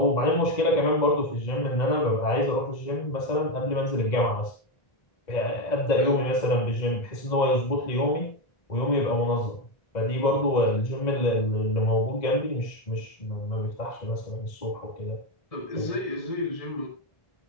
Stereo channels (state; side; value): late; right; 1.9 ms